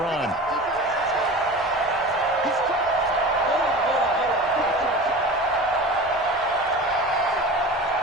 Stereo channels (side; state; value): both; normal; correlation 0.34